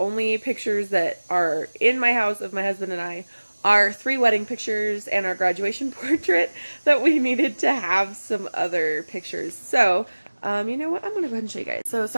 pictures that are in my house of my husband and I are 3 wedding pictures and our graduation portrait, that we needed to have some other pictures. So you know what? I'm going to go ahead and show you guys. So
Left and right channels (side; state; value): both; inverted; correlation -1.00